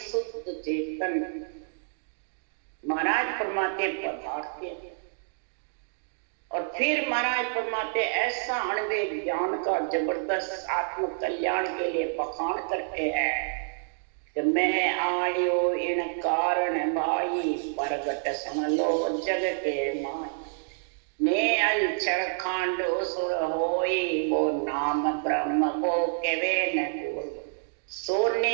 चेतन महाराज फरमाते पदार्थ हैं। और फिर महाराज फरमाते ऐसा अणवे ज्ञान का जबरदस्त आत्म कल्याण के लिए बखान करते हैं कि मैं आयो इन कारण भाई प्रगट सुन लो जग के माय। ने अंचर खांड सुर होई वो नाम ब्रह्म को केवे न कोई।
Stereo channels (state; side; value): silent; left; digital silence